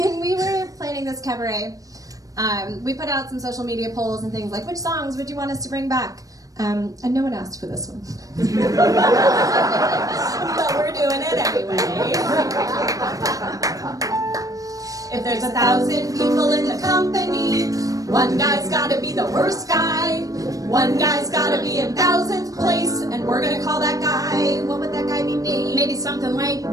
we were planning this cabaret, we put out some social media polls and things like, which songs would you want us to bring back? And no one asked for this one. But we're doing it anyway. If there's 1,000 people in the company, one guy's gotta be the worst guy. One guy's gotta be in 1,000th place, and we're gonna call that guy. What would that guy be named? Maybe something like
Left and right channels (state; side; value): late; left; 0.17 ms